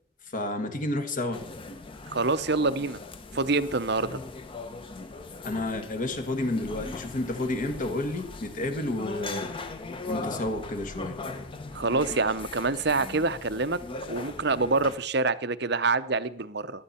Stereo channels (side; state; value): both; normal; correlation 0.02